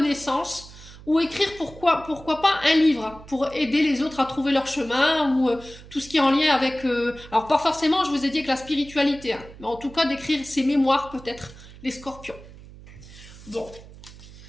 ou écrire pourquoi pas un livre pour aider les autres à trouver leur chemin, ou tout ce qui est en lien avec... alors pas forcément, je vous ai dit, avec la spiritualité, hein, mais en tout cas d'écrire ses mémoires peut-être, les scorpions. Bon.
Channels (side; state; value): right; noise; hum, 18 dB below the sound